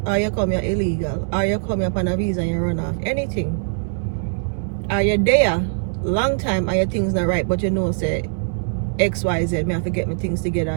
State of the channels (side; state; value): left; silent; digital silence